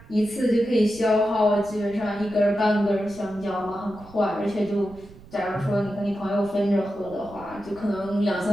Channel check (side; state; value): right; noise; rumble, 21 dB below the sound